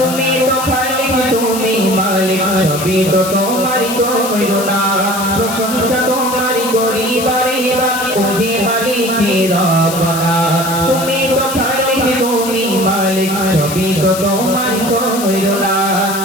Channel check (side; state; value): left; noise; hiss, 8 dB below the sound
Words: তো খালিক তুমি মালিক সবই তো তোমারই করুণা প্রশংসা তোমার করি বারে বারে ওহে মালিক রব্বানা তুমি তো খালিক তুমি মালিক সবই তো তোমার করুণা